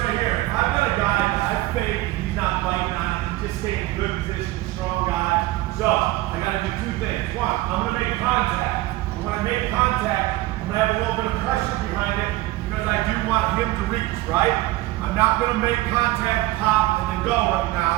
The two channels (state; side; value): quieter; left; 18.0 dB